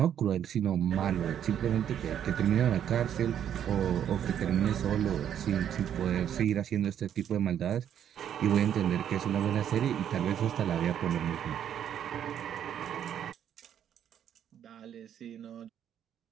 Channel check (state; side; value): quieter; left; 9.6 dB